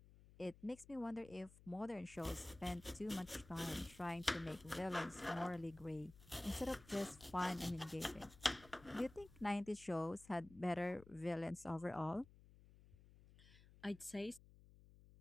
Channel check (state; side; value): noise; left; hum, 21 dB below the sound